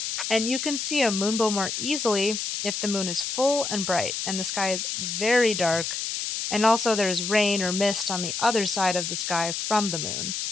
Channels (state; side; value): noise; left; hiss, 3 dB below the sound